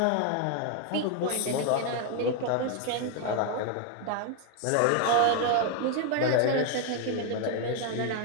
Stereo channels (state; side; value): different; both; correlation 0.01